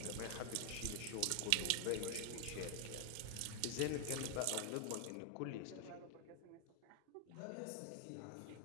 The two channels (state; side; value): different; both; correlation 0.00